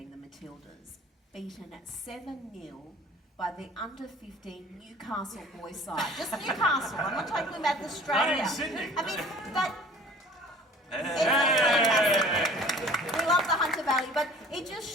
the Matildas, beaten at 7-0 by the under-15 Newcastle boys side. Just Newcastle. I'm not talking about Australia. Not in Sydney. I mean, that. We love the Hunter Valley, but it just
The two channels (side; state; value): both; normal; correlation 0.46